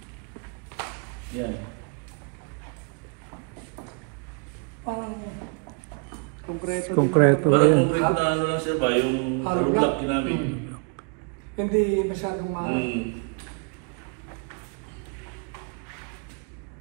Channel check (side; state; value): left; quieter; 37.4 dB